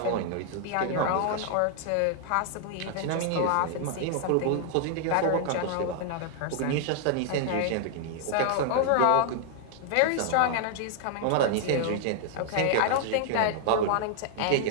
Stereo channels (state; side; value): different; both; correlation 0.00